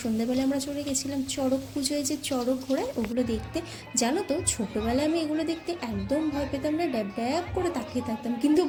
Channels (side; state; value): both; identical; correlation 1.00